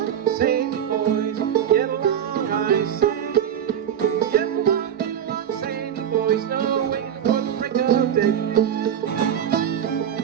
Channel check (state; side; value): quieter; left; 9.3 dB